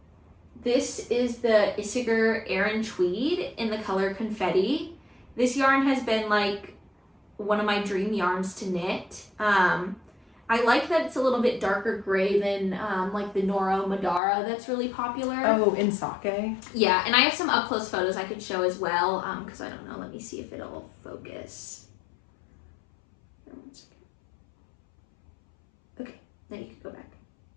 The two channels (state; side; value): drops out; right; at 14.2 s